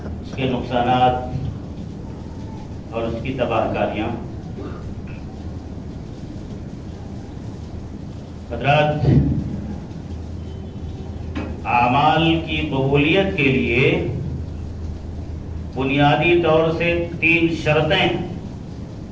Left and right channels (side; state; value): both; identical; correlation 1.00